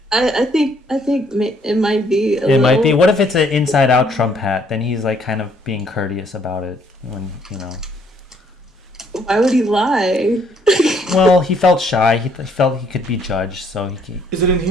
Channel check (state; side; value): normal; both; correlation 0.66